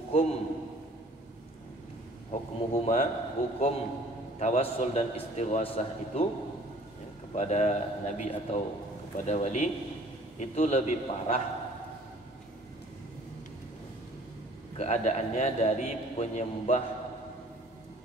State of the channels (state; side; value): normal; both; correlation 0.53